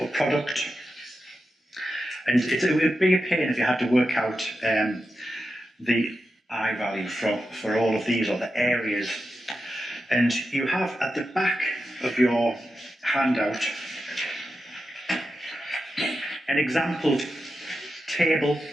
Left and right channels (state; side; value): normal; both; correlation 0.90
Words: product. And it would be a pain if you had to work out the I value for all of these, or the areas. And you have at the back of your handout an example table.